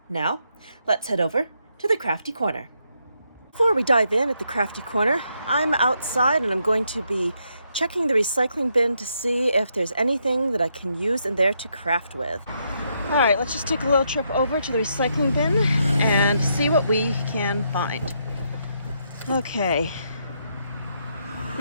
Now, let's head over to the Crafty Corner. Before we dive in at the Crafty Corner, I'm outside and I'm going to be checking the recycling bin to see if there's anything that I can use in there to craft with. All right, let's just take a little trip over to the recycling bin and see what we can find. Okay.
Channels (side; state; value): both; inverted; correlation -0.78